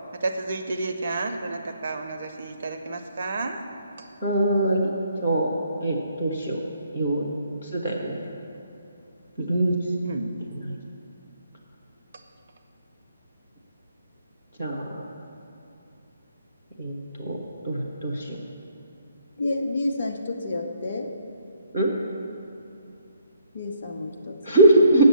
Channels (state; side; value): inverted; both; correlation -0.67